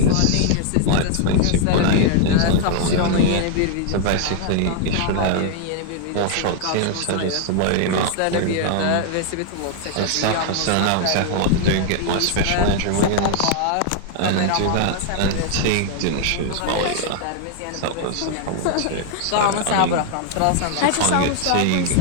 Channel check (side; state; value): both; different; correlation 0.00